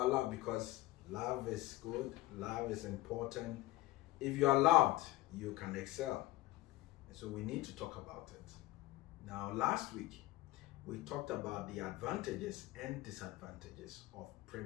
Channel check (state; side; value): quieter; right; 17.7 dB